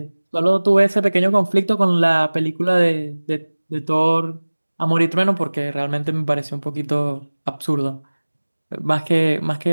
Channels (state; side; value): inverted; both; correlation -1.00